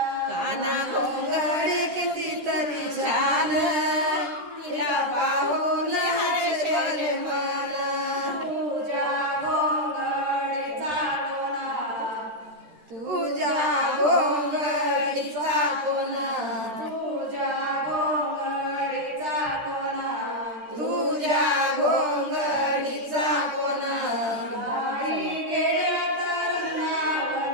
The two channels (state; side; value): late; left; 13 ms